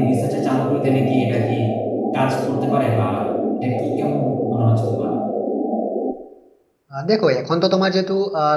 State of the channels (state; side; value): identical; both; correlation 1.00